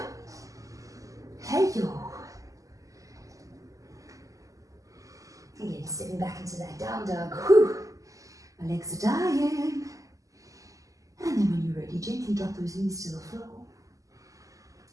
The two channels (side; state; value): left; late; 0.16 ms